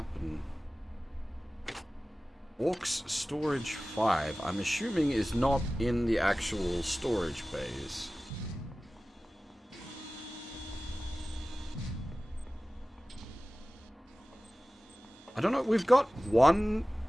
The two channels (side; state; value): both; normal; correlation 0.97